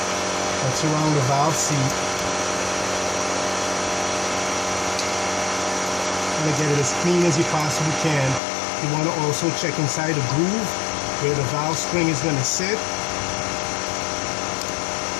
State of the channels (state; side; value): drops out; right; at 8.4 s